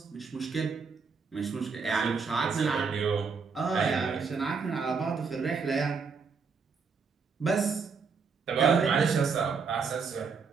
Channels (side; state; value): left; quieter; 5.3 dB